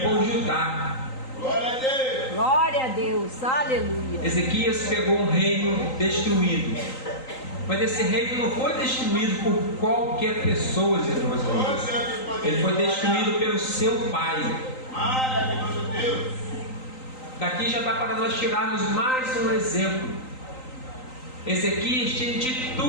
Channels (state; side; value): late; right; 3.9 ms